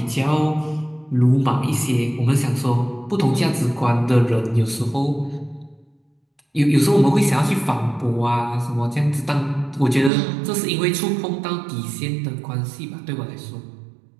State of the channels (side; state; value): left; drops out; at 10.1 s